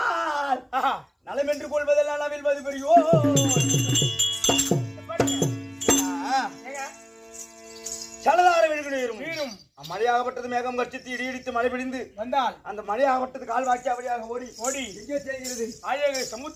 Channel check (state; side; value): identical; both; correlation 1.00